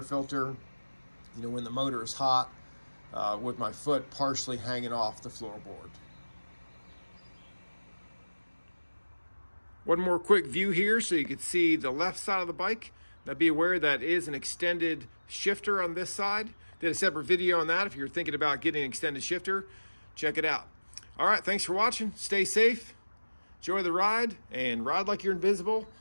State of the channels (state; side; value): inverted; both; correlation -1.00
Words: filter, you know, when the motor is hot, with my foot partially hanging off the floorboard. One more quick view here so you can see the left side of the bike. Now be aware that is an extended shifter on this side. Did a separate video on that. If you're thinking about getting an extended shifter, check it out. All right, thanks for watching. Stay safe, enjoy the ride, and ride like you're invisible,